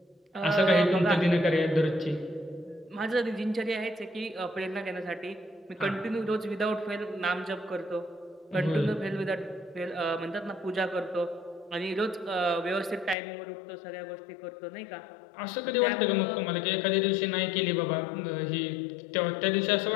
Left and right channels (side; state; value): right; drops out; at 13.2 s